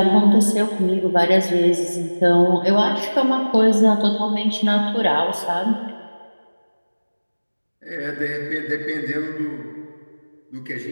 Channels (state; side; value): inverted; both; correlation -1.00